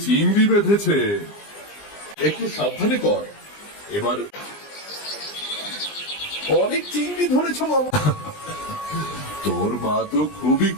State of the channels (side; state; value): right; late; 20 ms